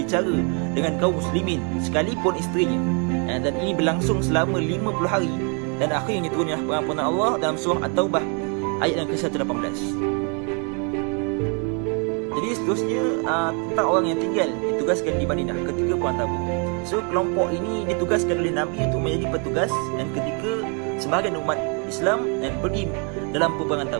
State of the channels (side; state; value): left; quieter; 36.5 dB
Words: dengan kaum muslimin sekalipun isterinya. Dan ini berlangsung selama 50 hari dan akhirnya turunlah pengampunan Allah dalam surah At-Taubah ayat yang ke-118. Jadi seterusnya tentang orang yang tinggal ditugaskan di Madinah ketika perang Tabuk. So kelompok ini ditugaskan oleh Nabi untuk menjadi petugas dan ketika sebahagian umat Islam dan pergi dalam peperangan